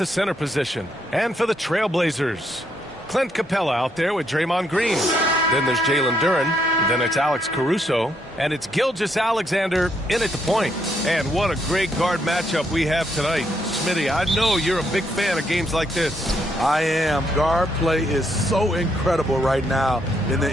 center position. And for the Trailblazers, Clint Capella out there with Draymond Green. Then there's Jalen Duren. Then it's Alex Caruso. And it's Gilgeous-Alexander in at the point. And what a great guard matchup we have tonight. Smitty, I know you're a big fan of games like this. I am. Guard play is so incredible right now in the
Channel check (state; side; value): normal; both; correlation 0.74